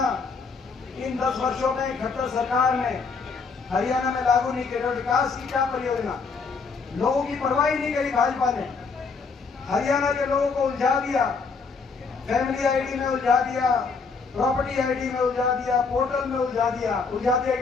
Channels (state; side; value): quieter; right; 4.8 dB